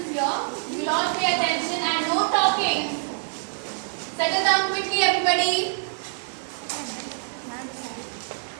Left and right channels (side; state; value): left; silent; digital silence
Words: here. You will all pay attention and no talking. Settle down quickly, everybody.